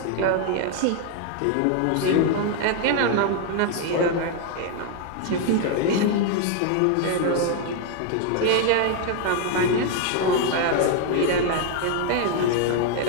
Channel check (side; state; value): both; different; correlation 0.01